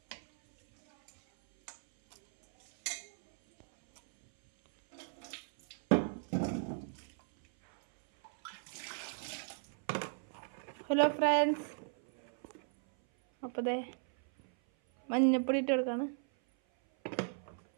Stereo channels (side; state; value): left; silent; 54 dB below the other